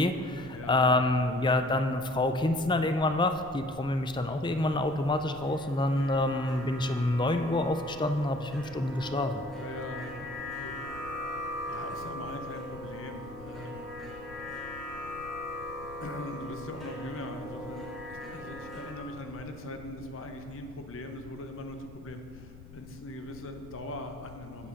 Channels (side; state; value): left; noise; rumble, 18 dB below the sound